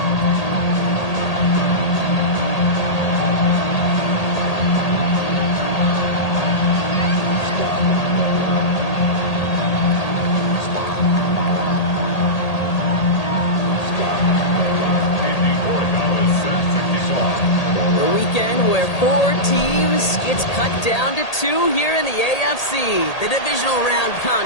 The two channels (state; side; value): late; right; 1.8 ms